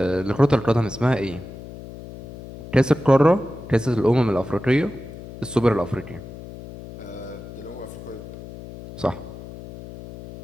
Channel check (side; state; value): left; noise; hum, 14 dB below the sound